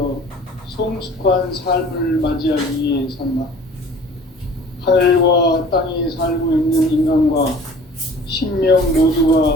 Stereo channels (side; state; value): both; normal; correlation 0.47